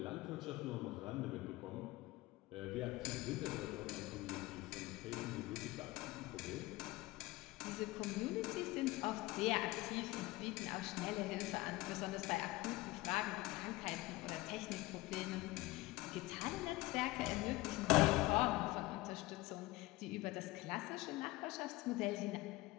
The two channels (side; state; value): right; quieter; 19.5 dB